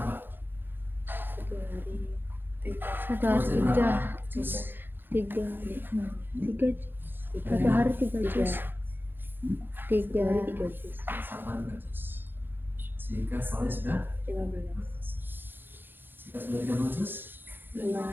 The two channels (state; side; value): late; left; 0.098 ms